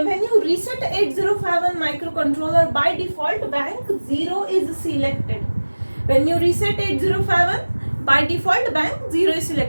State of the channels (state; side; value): inverted; both; correlation -1.00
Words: you reset 8051 microcontroller, by default bank 0 is selected. When you reset 8051, by default bank 0 is